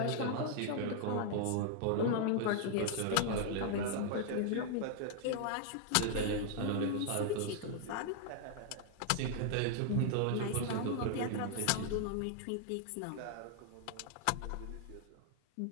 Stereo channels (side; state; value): both; different; correlation 0.00